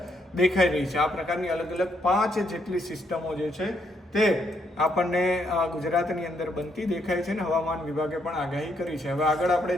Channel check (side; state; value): both; normal; correlation 0.74